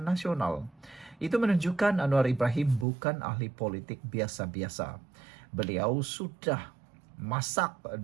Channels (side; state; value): left; drops out; at 2.9 s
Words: Nasional. Itu menunjukkan Anwar Ibrahim bukan ahli politik biasa-biasa. Beliau sudah masak